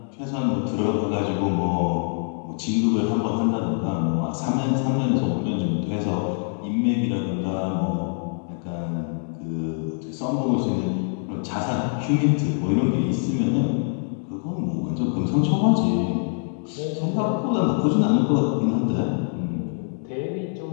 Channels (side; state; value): right; silent; 62 dB below the other